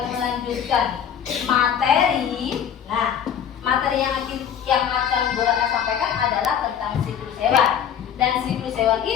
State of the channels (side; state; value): right; quieter; 8.7 dB